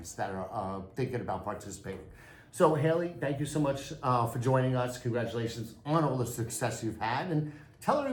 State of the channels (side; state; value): both; identical; correlation 1.00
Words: that are thinking about participating. So Haley, thank you so much for joining us. Congratulations on all the success you've had, and tell